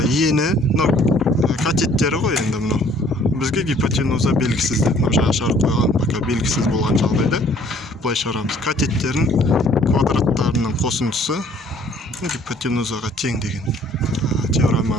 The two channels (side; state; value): both; normal; correlation 0.58